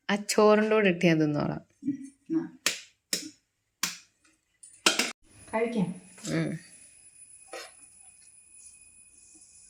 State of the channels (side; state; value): both; identical; correlation 1.00